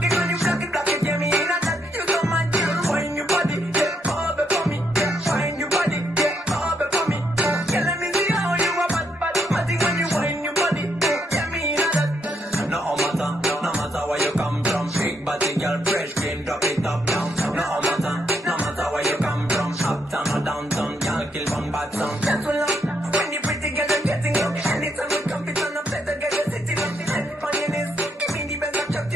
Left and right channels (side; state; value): both; normal; correlation 0.76